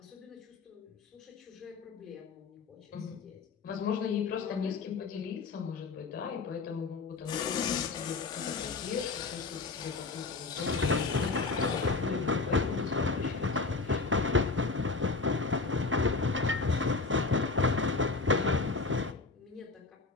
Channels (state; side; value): quieter; right; 4.0 dB